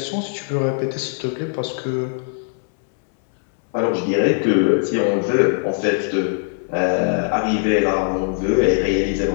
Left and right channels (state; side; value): silent; right; 64 dB below the other